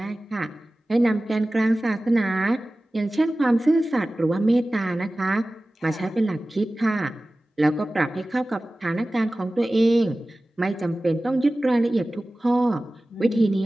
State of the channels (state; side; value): normal; both; correlation 0.97